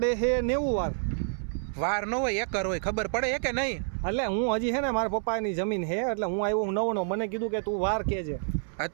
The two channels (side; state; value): left; silent; 59 dB below the other